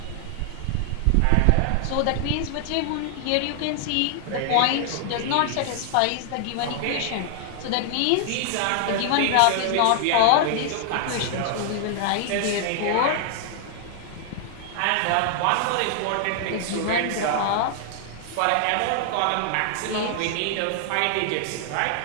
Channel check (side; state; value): both; different; correlation 0.00